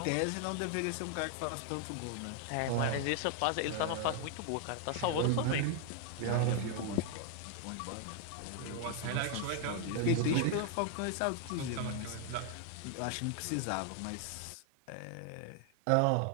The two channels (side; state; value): both; different; correlation 0.00